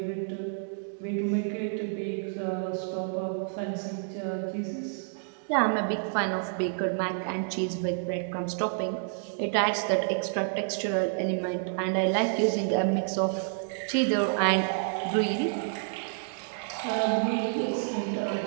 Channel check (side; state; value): left; silent; digital silence